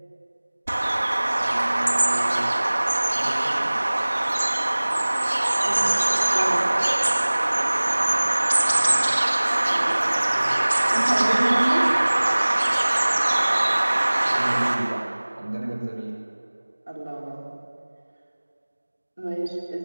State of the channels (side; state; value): both; inverted; correlation -1.00